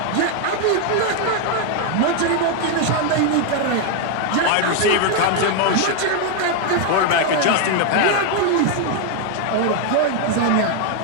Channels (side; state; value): both; different; correlation 0.00